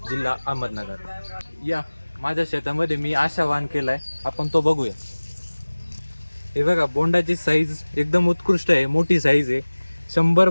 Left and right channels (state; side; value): inverted; both; correlation -1.00